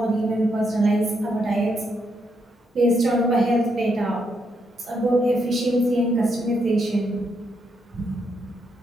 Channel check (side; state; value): both; normal; correlation 0.78